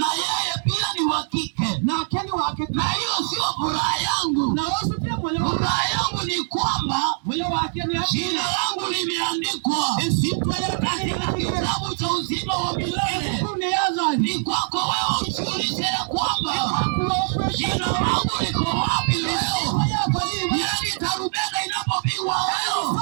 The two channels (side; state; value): left; silent; 62 dB below the other